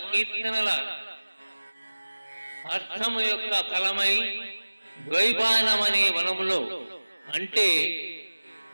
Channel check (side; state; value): both; inverted; correlation -1.00